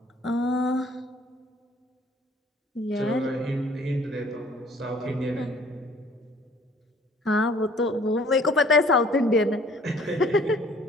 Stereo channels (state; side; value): normal; both; correlation 0.56